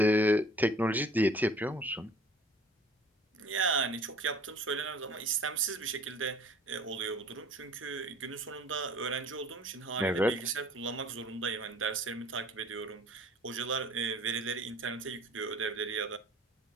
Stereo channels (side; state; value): both; normal; correlation 0.50